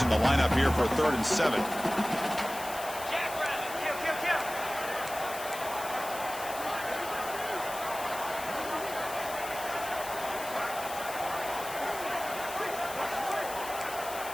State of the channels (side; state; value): left; noise; hiss, 11 dB below the sound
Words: the lineup here for 3rd and 7.